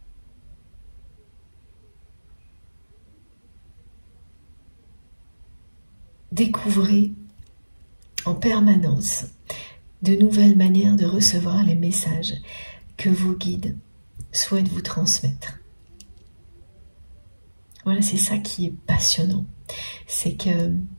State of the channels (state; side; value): inverted; both; correlation -1.00